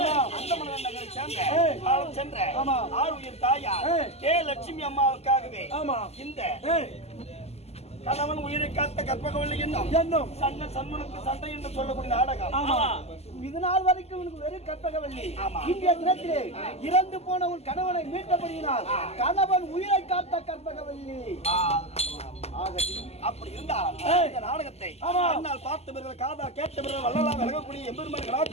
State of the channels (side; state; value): right; late; 0.30 ms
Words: அந்தமலை நகரை சேர்ந்த காலம் சென்ற ஆறு உயிர் தாயார் கே லட்சுமி அம்மாவுக்காகவே இந்த கணவன் உயிரை காத்த கற்பகவல்லி என்னும் சண்டை சண்முனுக்கு சண்டை என்று சொல்லக்கூடிய நாடகம். இது நாள் வரைக்கும் உனக்கு வெறும் கற்பகவல்லி. இன்றைய தினத்திலே இறந்து போன உன் கணவனை மீட்டபடியினால் கணவன் உயிரை காத்த கற்பகவல்லி. அப்படி இருந்தால் இந்த நாடகத்தை அண்ணால் பார்த்தவர்கள் காதா கேட்டவர்கள் வள்ளலா விலகக்கூடிய எம்பெருமான்